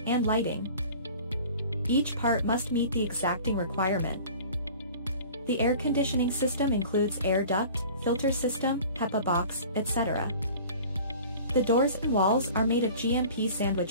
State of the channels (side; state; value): both; inverted; correlation -0.43